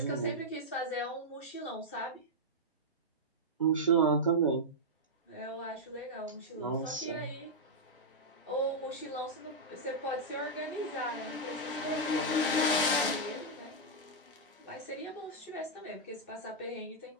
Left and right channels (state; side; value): normal; both; correlation -0.06